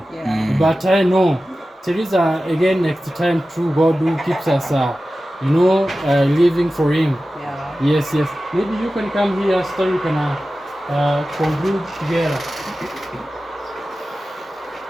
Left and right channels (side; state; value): both; normal; correlation 0.94